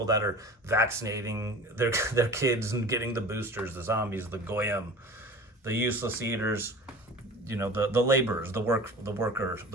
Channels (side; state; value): both; normal; correlation 0.39